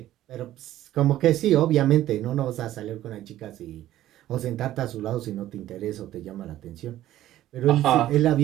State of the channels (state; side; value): quieter; left; 13.7 dB